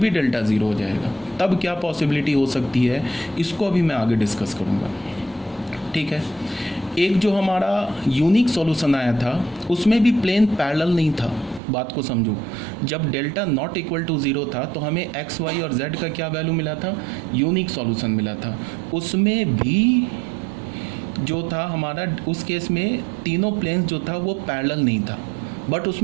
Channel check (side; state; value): left; drops out; at 11.6 s